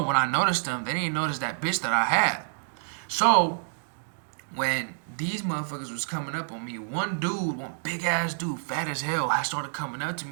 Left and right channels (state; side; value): silent; left; digital silence